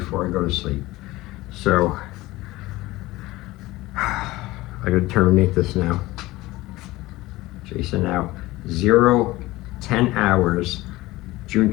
I go to sleep. So I gotta terminate this now. Jason out. 0:10 hours, June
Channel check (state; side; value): quieter; right; 18.8 dB